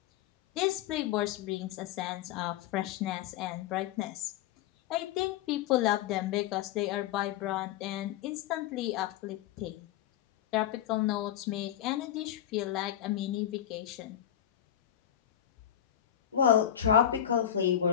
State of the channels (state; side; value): quieter; right; 10.7 dB